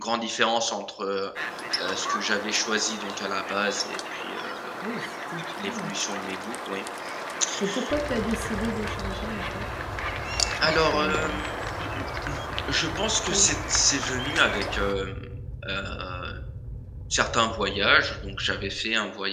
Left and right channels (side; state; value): both; identical; correlation 1.00